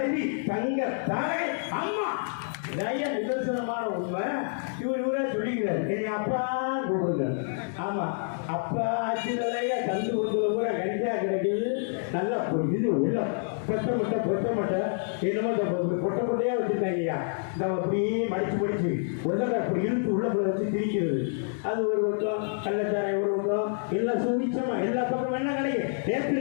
தங்க தாரை அம்மா. நிதர்சனமான உண்மை. இவரே சொல்லிக்கிறார், என்னை அப்பா கூப்பிடுங்க. ஆமா, அப்பா ஆட்சி தலைய கந்து கொடுக்குற கூட கஞ்சா கிடைக்குது. நல்லா இது உள்ள பொட்ட மட்டை என்னமோ பொட்ட பொட்டையா வச்சுருக்காங்கய்யா. இந்த அப்படியே மடிச்சு உள்ள அப்படி இழுத்து உள்ள வச்சு திரிக்கிறது. அது ஒரு பக்கம், கள்ளச்சாரை ஒரு பக்கம், எல்லாம் சுவிச்சமா எல்லா பக்கம் என்ன கிடைக்கும். நேற்று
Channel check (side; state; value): right; silent; digital silence